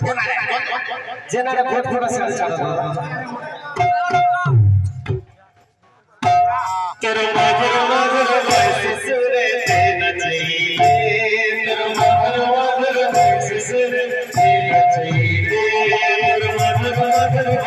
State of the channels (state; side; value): identical; both; correlation 1.00